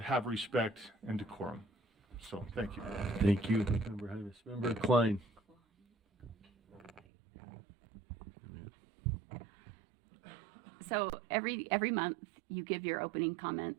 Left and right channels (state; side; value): drops out; left; at 7.0 s